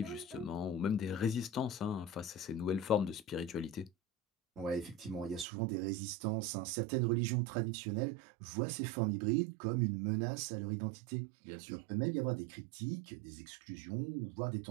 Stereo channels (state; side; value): drops out; left; at 5.5 s